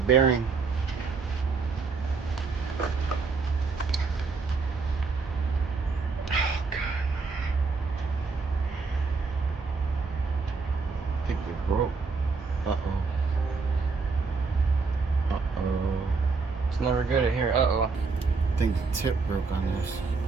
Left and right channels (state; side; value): quieter; left; 4.5 dB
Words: Oh God! I think they broke. Uh-oh. Uh-oh. It's never good at here. Uh-oh. I think the tip broke on this.